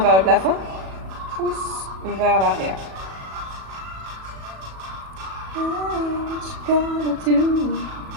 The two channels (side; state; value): left; late; 37 ms